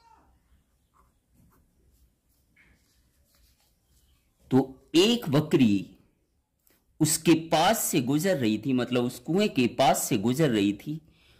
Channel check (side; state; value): both; identical; correlation 1.00